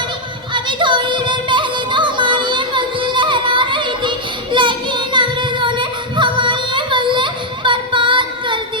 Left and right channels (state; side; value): normal; both; correlation -0.02